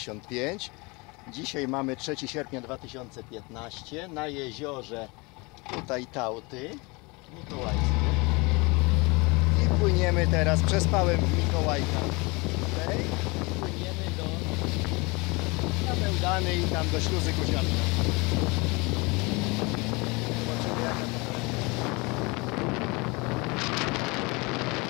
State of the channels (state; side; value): quieter; right; 26.6 dB